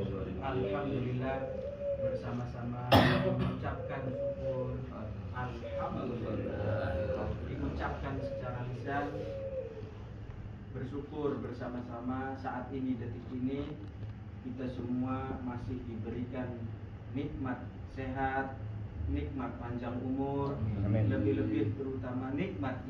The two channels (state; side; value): identical; both; correlation 1.00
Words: Alhamdulillah, bersama-sama mengucapkan syukur. Alhamdulillah, diucapkan secara lisan, bersyukur bersama-sama. Saat ini, detik ini, kita semua masih diberikan nikmat sehat, nikmat panjang umur, lebih-lebih terutama nikmat